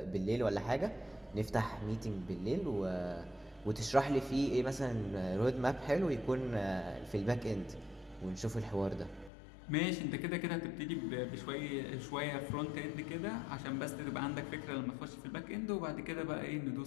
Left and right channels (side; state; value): right; drops out; at 9.3 s